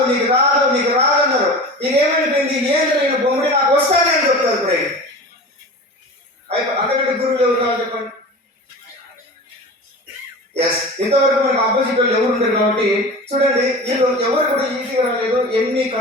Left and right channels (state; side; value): normal; both; correlation 0.34